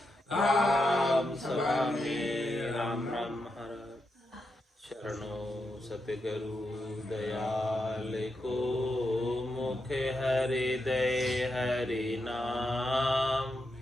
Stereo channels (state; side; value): normal; both; correlation 0.85